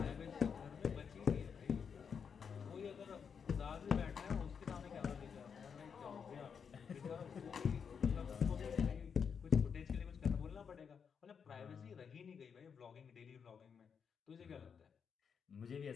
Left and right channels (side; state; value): right; quieter; 6.6 dB